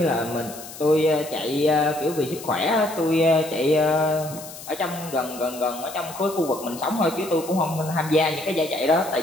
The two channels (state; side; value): noise; left; hiss, 14 dB below the sound